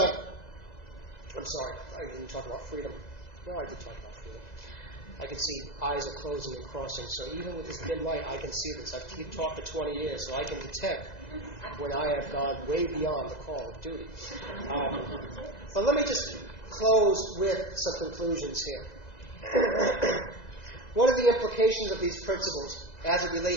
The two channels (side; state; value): right; late; 2.0 ms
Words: I'm sorry, I didn't talk about freedom. No, I did talk about freedom. I can see eyes are closing and crossing, so even with this dim light, I can see this. I've talked for 20 years, so I can detect when I have gone way beyond the call of duty. But let me just close with some conclusions here. What are the implications of these principles as it